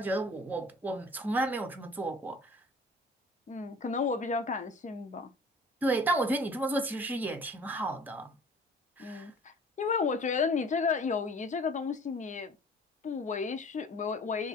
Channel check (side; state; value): both; normal; correlation 0.48